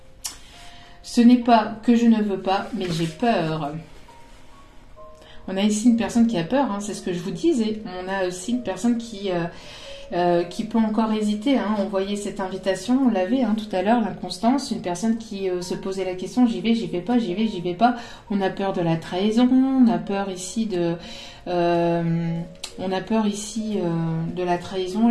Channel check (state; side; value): identical; both; correlation 1.00